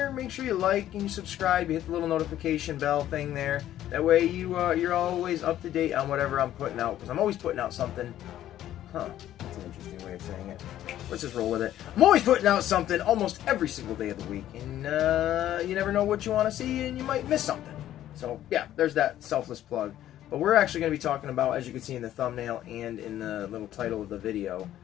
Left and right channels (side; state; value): right; quieter; 12.5 dB